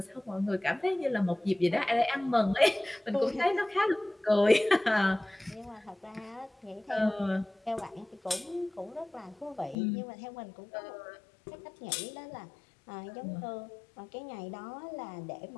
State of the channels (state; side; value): drops out; right; at 9.8 s